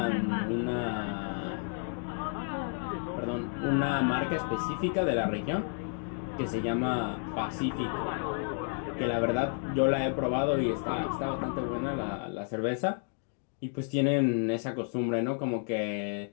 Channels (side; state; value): right; silent; 57 dB below the other